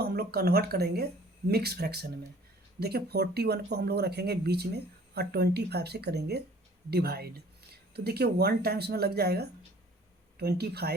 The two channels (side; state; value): both; normal; correlation 0.52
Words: हम लोग कन्वर्ट करेंगे मिक्स फ्रैक्शन में। देखिए 41 को हम लोग रखेंगे बीच में और 25 से करेंगे डिवाइड। तो देखिए 1 टाइम्स में लग जाएगा